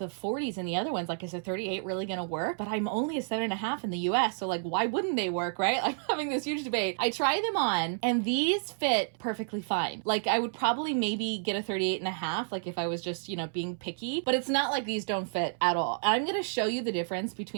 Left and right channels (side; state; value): left; silent; 58 dB below the other